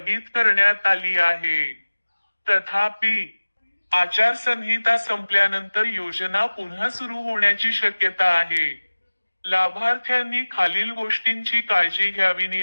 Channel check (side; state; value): both; inverted; correlation -1.00